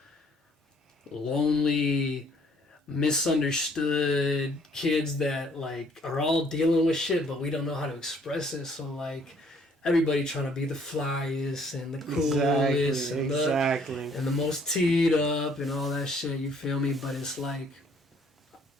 lonely, misunderstood kids that, like, are all dealing with shit, but we don't know how to express it. So, like, everybody trying to be the flyest and the coolest and the most teed up and all that shit, you feel me? But it's like,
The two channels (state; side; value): normal; both; correlation 0.62